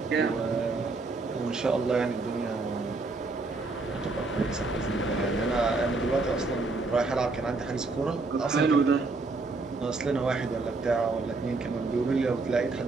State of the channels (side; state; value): left; quieter; 3.6 dB